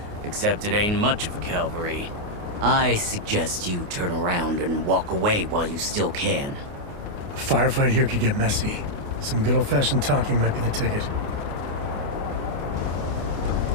Except it ain't much of a cavalry. I suggest you turn around and walk away while you still can. A firefight here could get messy. Some good old-fashioned talking might be the ticket.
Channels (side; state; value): left; late; 28 ms